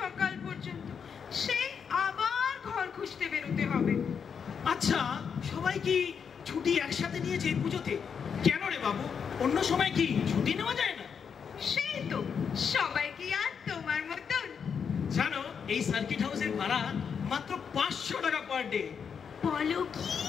পর্যন্ত, সেই আবার ঘর খুঁজতে বেরোতে হবে। আচ্ছা, সবাই কি ছুটি একসাথে নিয়েছে এই পুজোতে? কেন রে বাবু, অন্য সময় কি ছুটি নেওয়া যায় না? সেই তো, সবাই কি আর তোমার মতন? জানো, এই সার্কিট হাউসের ভাড়া মাত্র 500 টাকা পার ডে। বলো কি,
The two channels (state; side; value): quieter; right; 6.7 dB